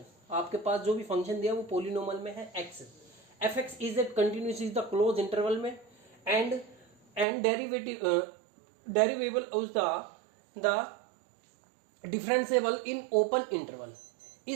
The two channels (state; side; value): drops out; left; at 7.2 s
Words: आपके पास जो भी फंक्शन दिया वो पोलिनोमल में है x, fx is a continuous is the close interval में and derivable is the differentiable in open interval